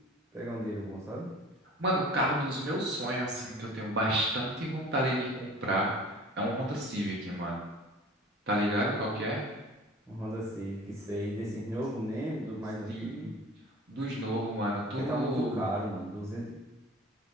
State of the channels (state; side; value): normal; both; correlation 0.44